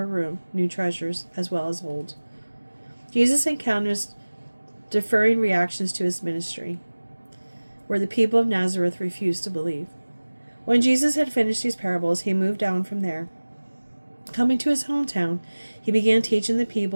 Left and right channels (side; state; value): both; inverted; correlation -1.00